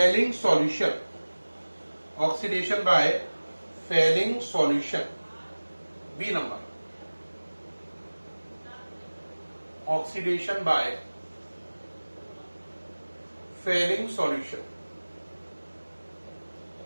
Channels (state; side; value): inverted; both; correlation -1.00